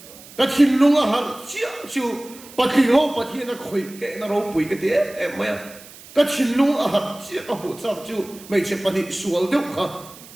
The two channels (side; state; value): right; noise; hiss, 19 dB below the sound